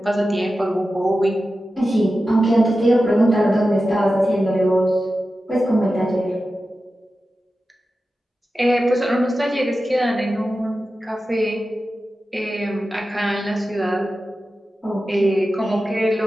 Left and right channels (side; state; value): both; normal; correlation 0.93